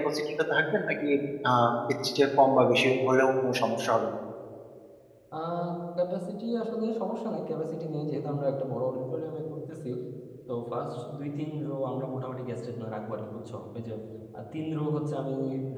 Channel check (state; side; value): identical; both; correlation 1.00